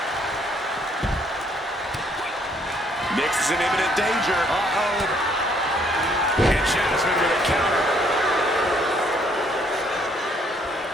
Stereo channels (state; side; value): normal; both; correlation 0.66